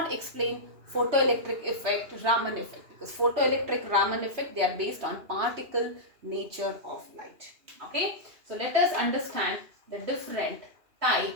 explain photoelectric effect, Raman effect, because photoelectric, Raman effect, they are based on particle nature of light. Okay, so let us understand the different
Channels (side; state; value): left; late; 2.9 ms